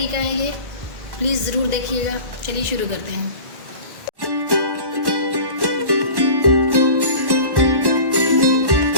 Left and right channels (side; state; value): left; late; 1.1 ms